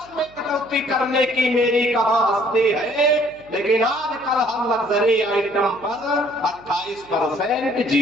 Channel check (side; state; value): right; noise; hum, 26 dB below the sound